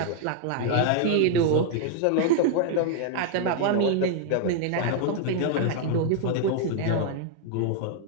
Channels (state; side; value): different; both; correlation 0.00